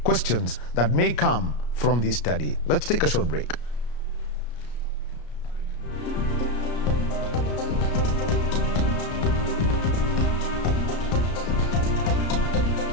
questions that may come from this study. Let's take a short break.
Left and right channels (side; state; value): right; late; 34 ms